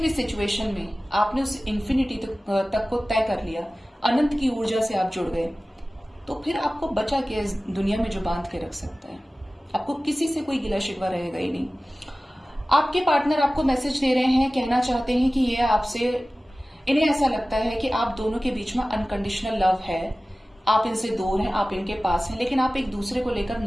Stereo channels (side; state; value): both; normal; correlation 0.97